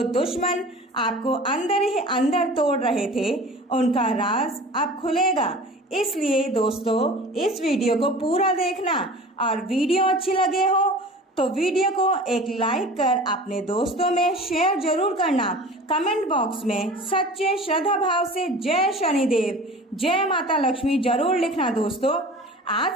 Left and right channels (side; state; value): both; normal; correlation 0.40